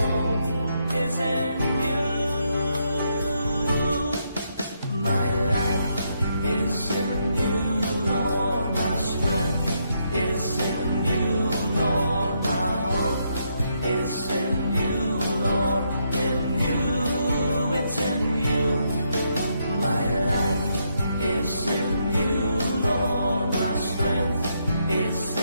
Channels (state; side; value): inverted; both; correlation -0.77